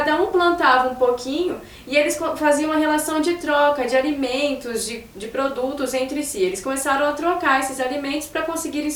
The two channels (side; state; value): both; identical; correlation 1.00